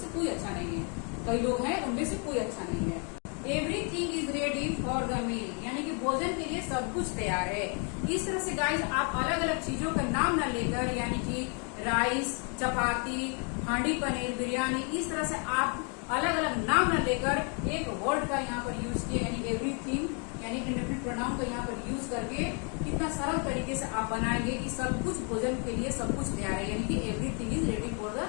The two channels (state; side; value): quieter; right; 38.0 dB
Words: कोई अच्छा नहीं है। कई लोग हैं, उनमें से कोई अच्छा नहीं है। Everything is ready for the meal, यानी कि भोजन के लिए सब कुछ तैयार है। इस तरह से गाइस आप अलग अलग चीजों का नाम न लेकर, यानी कि राइस, चपाती, हांडी पनीर, बिरयानी, इस तरह से आप अलग अलग नाम न लेकर एक वर्ड का यहाँ पर यूज किया, यानी एवरीथिंग, यानी इंडेफिनिट प्रोनाउन का यहाँ पर यूज करके कितना सरल तरीके से आप बनाएंगे कि सब कुछ भोजन के लिए सब कुछ तैयार है, यानी कि everything is ready for the